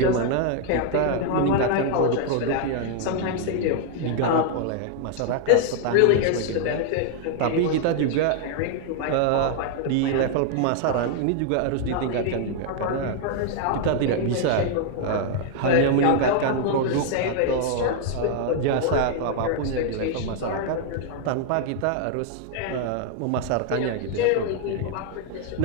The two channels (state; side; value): different; both; correlation 0.00